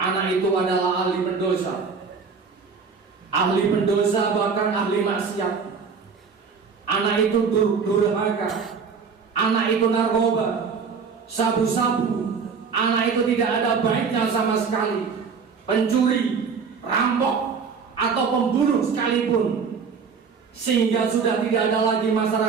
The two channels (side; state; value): left; quieter; 5.6 dB